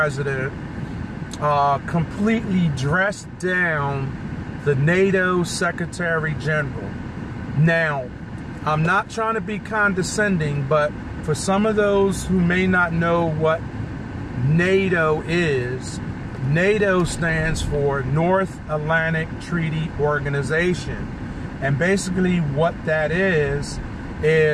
completely dressed down the NATO Secretary General. Now, I'm not trying to be condescending, but for some of those who may not know what NATO is, NATO stands for North Atlantic Treaty Organization. And basically what that is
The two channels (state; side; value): identical; both; correlation 1.00